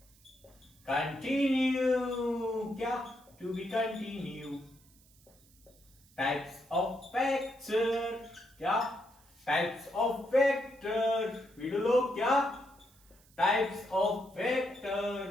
continue, क्या? To be continue. Types of vector, क्या? Types of vector. वीडियो लोग क्या? Types of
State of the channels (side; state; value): right; noise; hiss, 28 dB below the sound